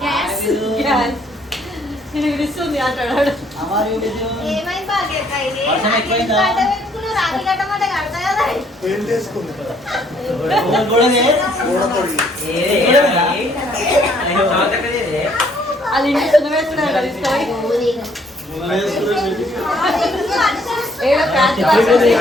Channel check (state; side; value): normal; both; correlation 0.65